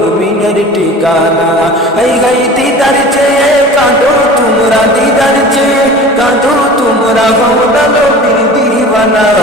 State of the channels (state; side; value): normal; both; correlation 0.40